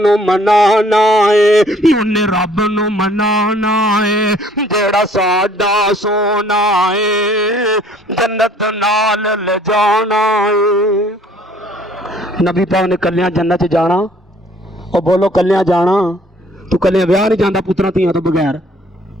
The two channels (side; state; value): both; normal; correlation 0.58